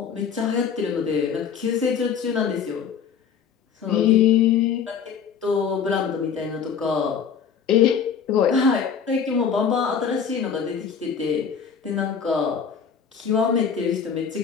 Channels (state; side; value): quieter; right; 7.0 dB